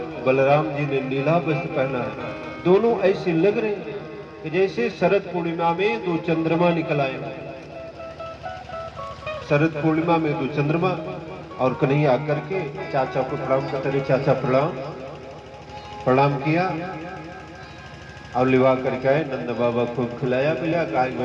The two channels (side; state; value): both; identical; correlation 1.00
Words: बलराम जी ने नीला वस्त्र पहना है। दोनों ऐसे लग रहे हैं कि जैसे शरद पूर्णिमा में 2 चंद्रमा निकल आए। शरद पूर्णिमा में 2 चंद्रमा, और कन्हैया आकर के चाचा को प्रणाम करते रहे। चाचा प्रणाम किया और लिवा करके आए। नंद बाबा खूब खिलाया पिलाया। कहा